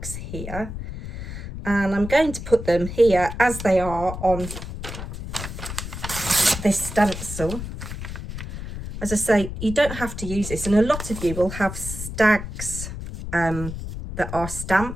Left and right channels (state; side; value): noise; left; rumble, 8 dB below the sound